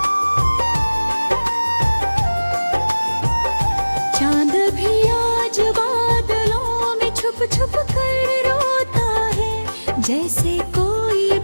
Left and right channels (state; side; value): inverted; both; correlation -1.00